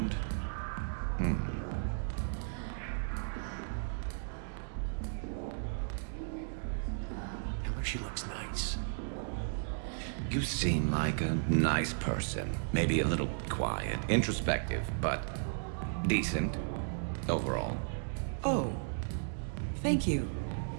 Tell her she looks nice. You seem like a nice person. Maybe a little quiet, introspective, but decent overall. Oh. Thank you.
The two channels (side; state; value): left; silent; digital silence